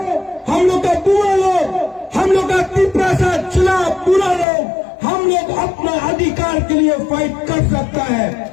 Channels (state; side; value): drops out; right; at 4.5 s